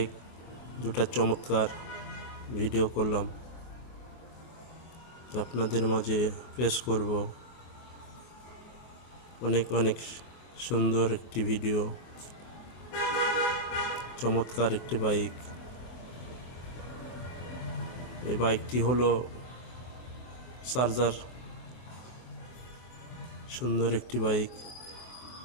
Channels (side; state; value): right; late; 23 ms